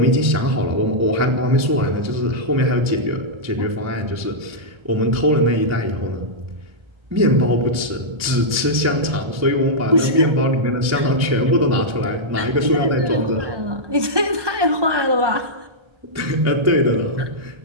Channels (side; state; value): left; late; 1.3 ms